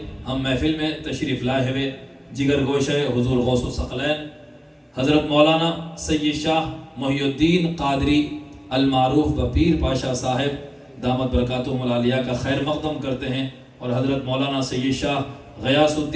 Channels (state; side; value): identical; both; correlation 1.00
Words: ہم محفل میں تشریف لائے ہوئے جگر گوشہ حضور غوث الثقلین حضرت مولانا سید شاہ محی الدین قادری المعروف بپیر پاشا صاحب دامت برکاتہم العالیہ کا خیر مقدم کرتے ہیں، اور حضرت مولانا سید شاہ غیاث